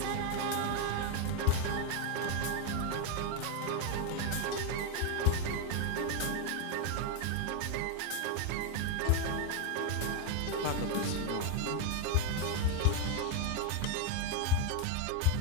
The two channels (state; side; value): different; both; correlation 0.01